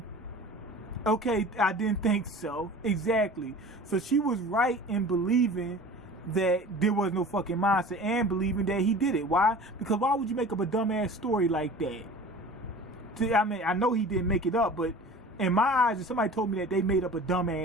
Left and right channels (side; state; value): both; normal; correlation 0.40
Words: Okay, I didn't think so. Exactly. So she was right in believing that there was no fucking monster and believing that he did it. Why? Because why would you make up a dumbass story like that? I mean, I know he didn't make it up, but in my eyes, if somebody told me that they made up a